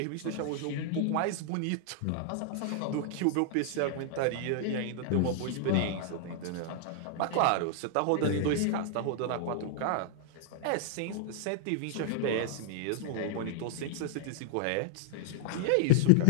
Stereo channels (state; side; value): different; both; correlation -0.01